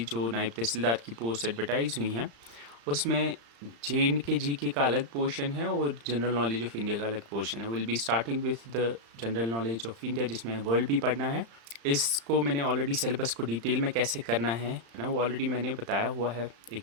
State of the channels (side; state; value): left; late; 35 ms